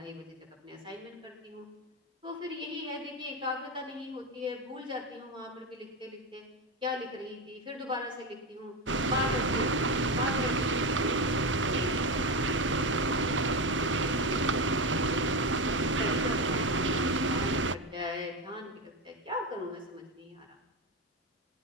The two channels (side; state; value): both; normal; correlation 0.15